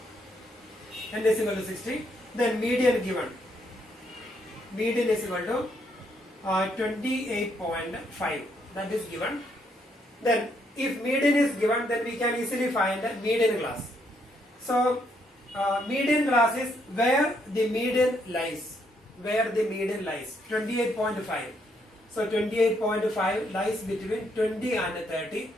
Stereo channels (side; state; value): both; normal; correlation 0.74